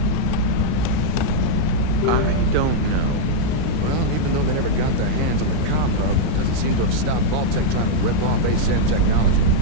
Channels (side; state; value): both; different; correlation -0.01